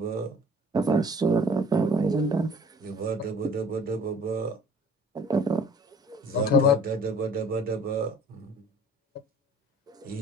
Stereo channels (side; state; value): both; normal; correlation 0.51